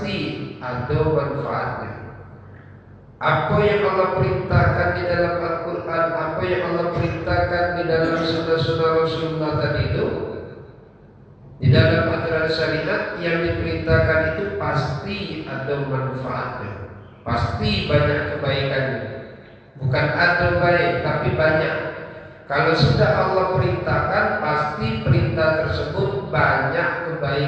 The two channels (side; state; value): both; identical; correlation 1.00